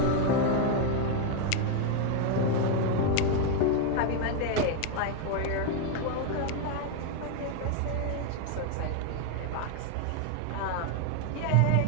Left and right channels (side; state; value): both; different; correlation 0.01